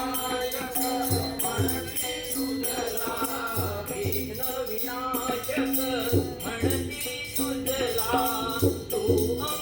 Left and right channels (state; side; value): identical; both; correlation 1.00